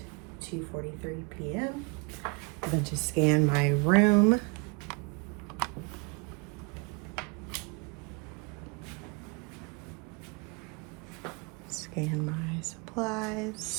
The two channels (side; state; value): left; quieter; 29.9 dB